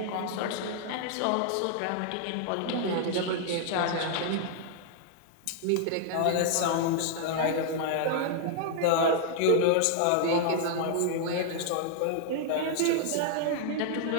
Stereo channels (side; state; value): both; different; correlation -0.01